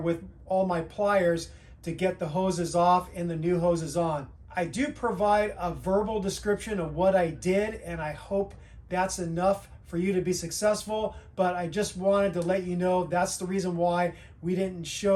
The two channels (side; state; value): both; identical; correlation 1.00